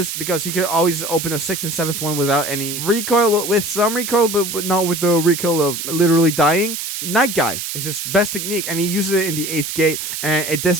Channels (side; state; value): right; noise; hiss, 5 dB below the sound